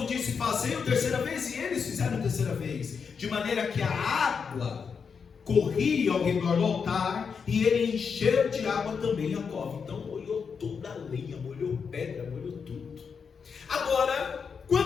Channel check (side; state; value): right; quieter; 6.0 dB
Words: disse: fazei-o terceira vez. E eles fizeram terceira vez. De maneira que a água corria ao redor do altar, e ele encheu de água também a cova. Então molhou toda a lenha, molhou pedra, molhou tudo. Agora,